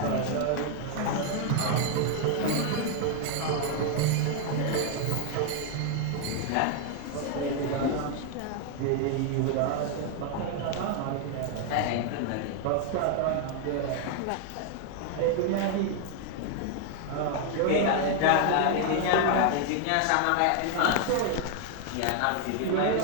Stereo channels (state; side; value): different; both; correlation 0.00